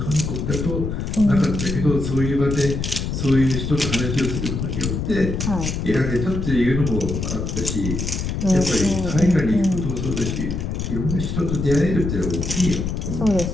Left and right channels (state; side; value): noise; left; rumble, 3 dB below the sound